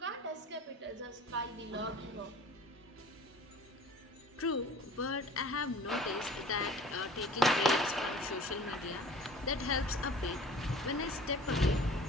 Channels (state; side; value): normal; both; correlation 0.45